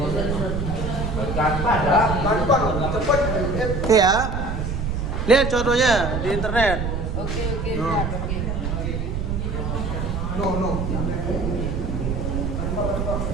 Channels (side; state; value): right; noise; rumble, 2 dB below the sound